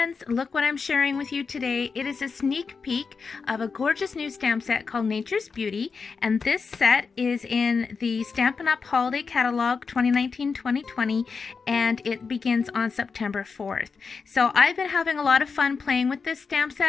look what I'm sharing with you today. It is a sneak peek of a gorgeous new stamp set called Nature's Beauty, and this set is in the Stampin' Up! Holiday Catalogue 2019-2020, and it begins on September 4th. So I've been having a lot of fun playing with this stamp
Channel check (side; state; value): right; quieter; 5.1 dB